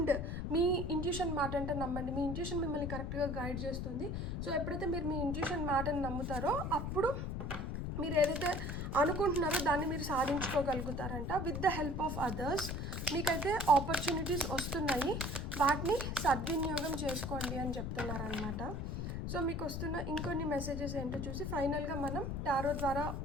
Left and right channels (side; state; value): left; noise; rumble, 3 dB below the sound